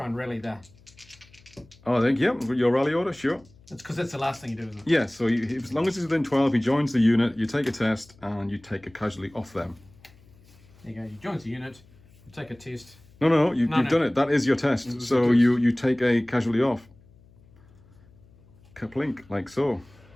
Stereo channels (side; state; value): left; noise; hum, 27 dB below the sound